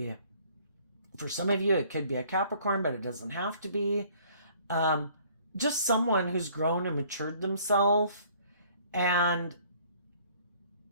for some of you, it could be a Capricorn, but it doesn't have to be. Just someone who's grown and matured themselves, and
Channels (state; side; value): inverted; both; correlation -0.57